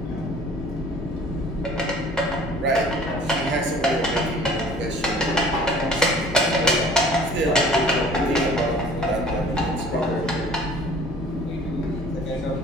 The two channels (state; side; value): normal; both; correlation 0.50